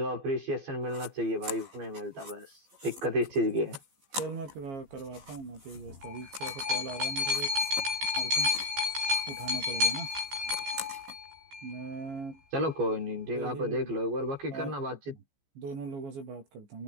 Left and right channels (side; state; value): left; late; 15 ms